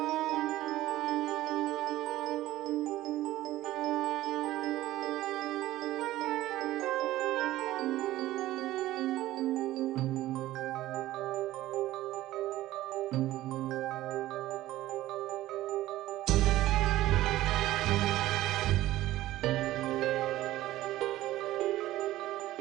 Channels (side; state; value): left; quieter; 15.6 dB